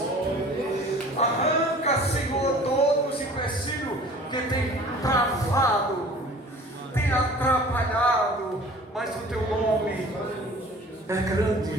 Arranca, Senhor, todos os empecilhos que tem travado, tem atrapalhado, mas o teu nome é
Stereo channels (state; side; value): normal; both; correlation 0.47